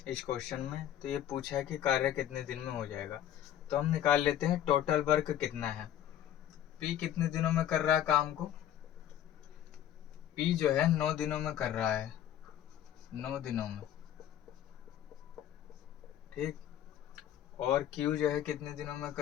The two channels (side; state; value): right; quieter; 11.0 dB